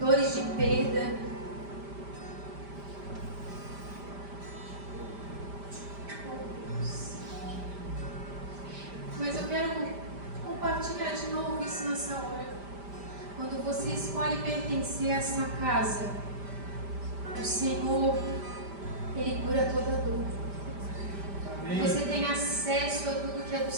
de perda. Mas eu quero compartilhar de novo isso nessa hora. Quando você escolhe pertencer a essa casa, o Senhor, Ele cura toda dor. Você tem acesso a tudo que é do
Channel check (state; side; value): late; left; 5.1 ms